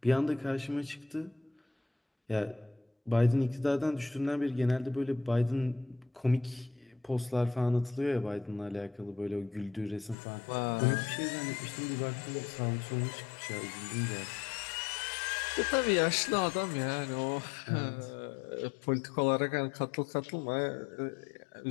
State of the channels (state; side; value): drops out; right; at 10.2 s